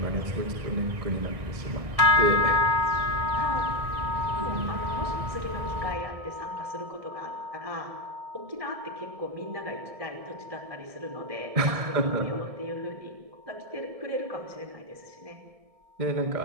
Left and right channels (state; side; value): late; left; 1.7 ms